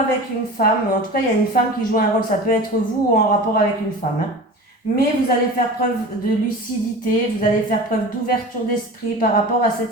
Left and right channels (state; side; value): normal; both; correlation 0.35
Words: une femme, en tout cas, il y a une femme qui joue un rôle, ça peut être vous ou en rapport avec une femme, hein. Mais vous allez faire preuve de lucidité, vous allez faire preuve d'ouverture d'esprit par rapport à